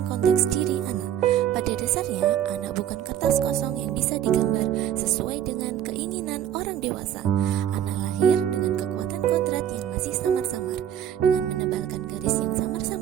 konteks diri anak. Pada dasarnya, anak bukan kertas kosong yang bisa digambar sesuai dengan keinginan orang dewasa. Anak lahir dengan kekuatan kodrat yang masih samar-samar. Dengan menebalkan garis yang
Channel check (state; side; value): quieter; left; 10.1 dB